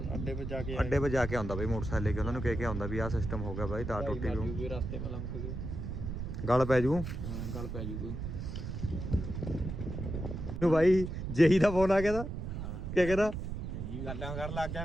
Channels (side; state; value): right; noise; rumble, 5 dB below the sound